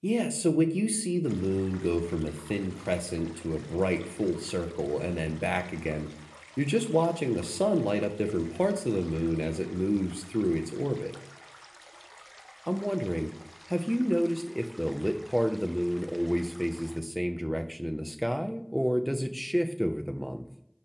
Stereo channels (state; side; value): identical; both; correlation 1.00